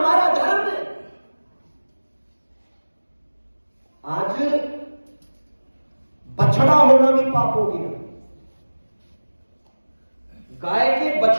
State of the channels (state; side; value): inverted; both; correlation -1.00